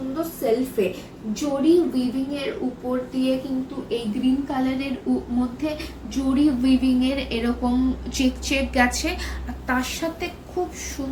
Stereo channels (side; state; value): both; identical; correlation 1.00